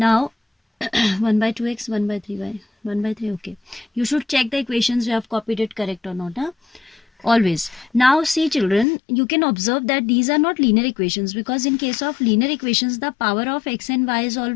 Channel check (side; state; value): right; drops out; at 8.8 s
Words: 1 by 2x, 1 by 3y, 1 by 3. Okay, you should check the equations you have copied it correct or not. Always. Now see children, you can observe that these are not linear equations because in case of linear equations the power of x and y is